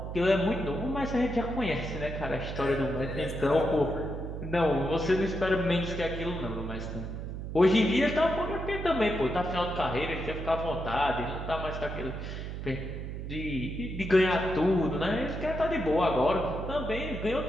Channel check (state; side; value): noise; right; hum, 6 dB below the sound